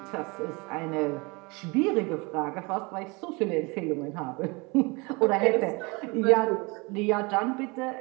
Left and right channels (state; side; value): quieter; left; 27.2 dB